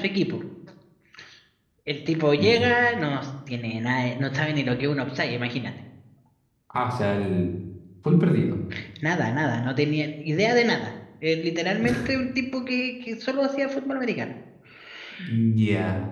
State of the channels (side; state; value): both; identical; correlation 1.00